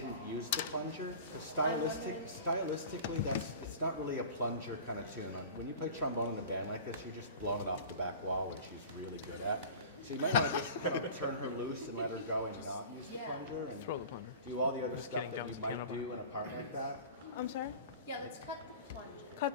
use the plunger? 'Cause stylistically, it's not really a plunger kind of tune. Like, when you play trombone in a band like this, you're just blowing it off the back wall, which she's really good at. So you might want to just kind of turn her loose and let her go and not use the plunger and Throw the plunger. do all the other Just stuff kidding, that jumps you the might piano do behind. in a part like that. I'm sorry? Yeah, let's cut the plunger.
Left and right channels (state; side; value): inverted; both; correlation -0.38